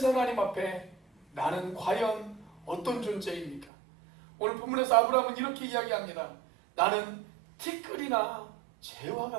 하나님 앞에 나는 과연 어떤 존재입니까? 오늘 본문에서 아브라함은 이렇게 이야기합니다. 나는 티끌이나 재와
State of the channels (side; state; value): left; drops out; at 3.7 s